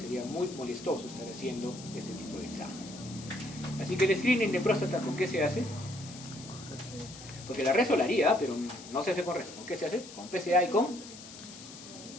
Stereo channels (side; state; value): left; noise; hiss, 15 dB below the sound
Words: muy molestoso estar haciendo este tipo de examen. Así que el screening de próstata, ¿con qué se hace? Porque la reso la haría, pero no se hace con reso. ¿Con qué se hace? Con PSA y con